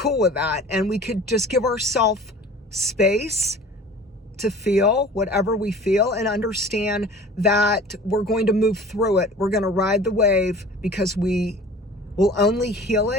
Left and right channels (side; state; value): both; normal; correlation 0.43